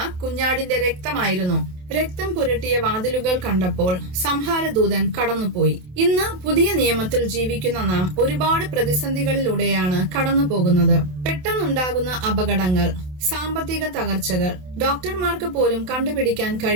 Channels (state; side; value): late; left; 27 ms